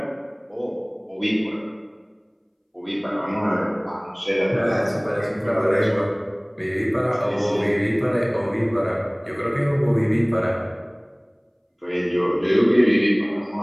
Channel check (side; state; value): both; identical; correlation 1.00